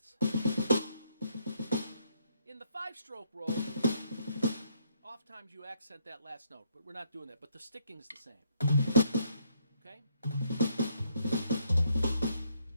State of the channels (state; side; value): inverted; both; correlation -0.71